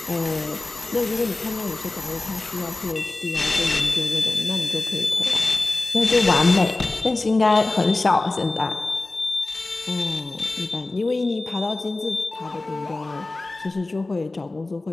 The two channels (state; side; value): quieter; right; 3.1 dB